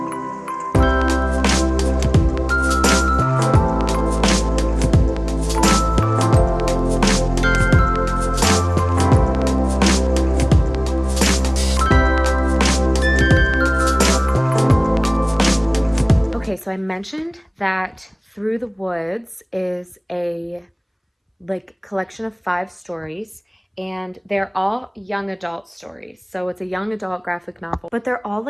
Okay, so I mentioned that Through the Woods is a collection of 5 stories, and they're all young adult stories. So it's a young adult graphic novel, but they're all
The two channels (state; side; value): identical; both; correlation 1.00